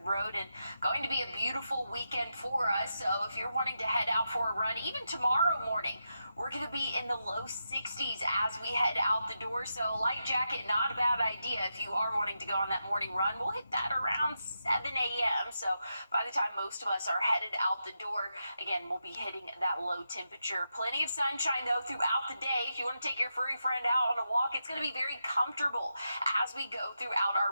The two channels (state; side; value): inverted; both; correlation -0.86